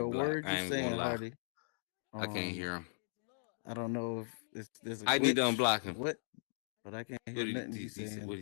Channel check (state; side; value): silent; right; digital silence